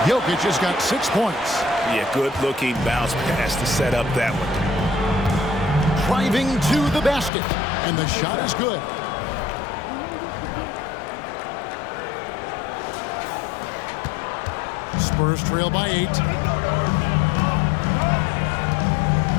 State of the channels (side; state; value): right; drops out; at 7.3 s